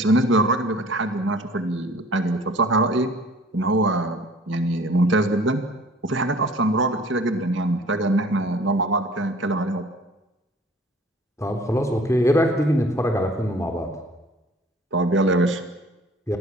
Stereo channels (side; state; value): both; normal; correlation 0.50